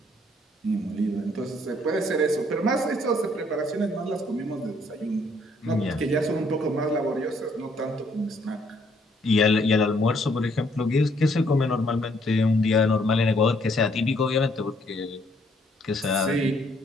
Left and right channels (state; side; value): normal; both; correlation 0.67